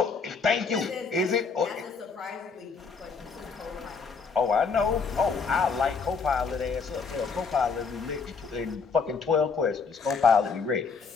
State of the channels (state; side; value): quieter; right; 5.1 dB